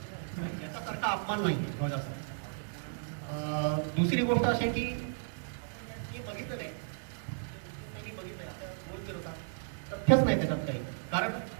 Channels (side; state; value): left; silent; digital silence